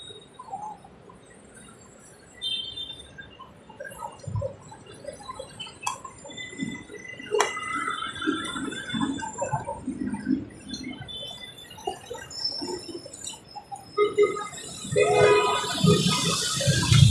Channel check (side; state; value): both; identical; correlation 1.00